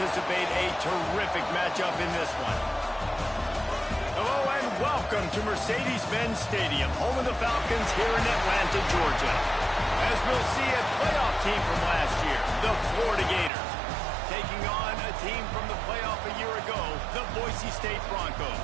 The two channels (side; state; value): left; drops out; at 13.5 s